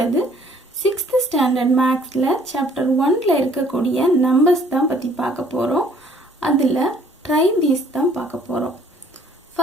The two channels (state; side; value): normal; both; correlation 0.59